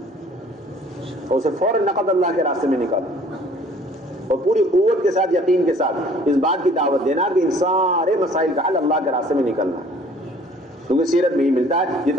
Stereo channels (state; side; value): normal; both; correlation 0.54